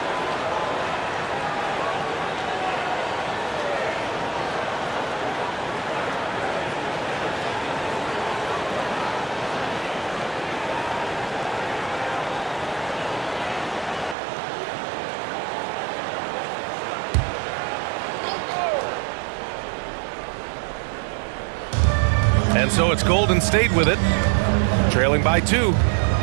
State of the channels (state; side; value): drops out; left; at 14.2 s